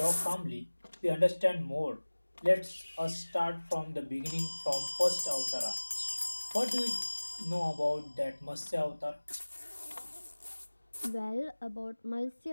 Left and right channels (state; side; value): inverted; both; correlation -1.00